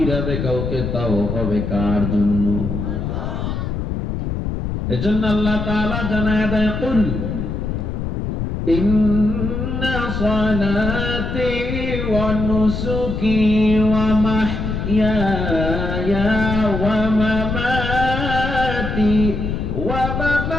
কাউকে তাও হবে কার জন্য? এজন্য আল্লাহ তাআলা জানায় দেয়, কুল ইন্না সালাতি ওয়া নুসুকি ওয়া মাহইয়ায়া ওয়া মামাতি ওয়া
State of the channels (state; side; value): noise; left; rumble, 3 dB below the sound